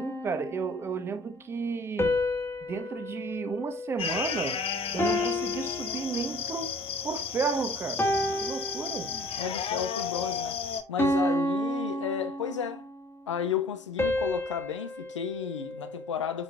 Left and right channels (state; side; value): normal; both; correlation 0.51